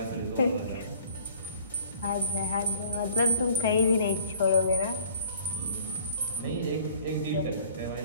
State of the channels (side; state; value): both; inverted; correlation -0.52